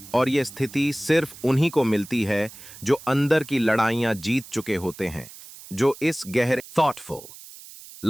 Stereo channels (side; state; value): right; noise; hiss, 17 dB below the sound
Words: और ये स्थिति सिर्फ उन्हीं को मिलती है जो अंदर की लड़ाइयां जीत चुके होते हैं, जो इस गहरे थॉटफुल